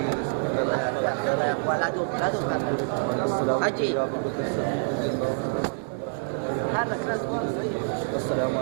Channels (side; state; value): left; silent; 60 dB below the other